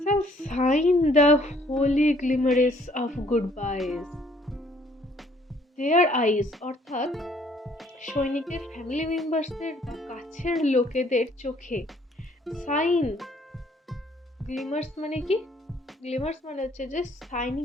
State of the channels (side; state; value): both; normal; correlation 0.62